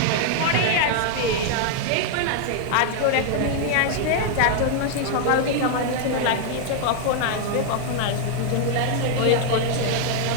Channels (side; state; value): both; different; correlation 0.00